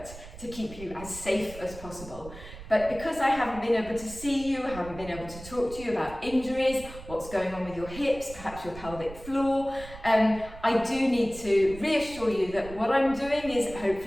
to keep you as safe as possible. But because I haven't been able to see you, I haven't been able to talk to you about injuries, what's going on with your hips, perhaps your pelvic floor, I do need to reassure you that what I'm doing is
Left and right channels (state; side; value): noise; right; rumble, 15 dB below the sound